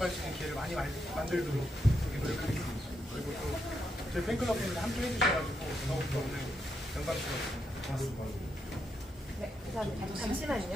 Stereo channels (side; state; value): both; normal; correlation 0.81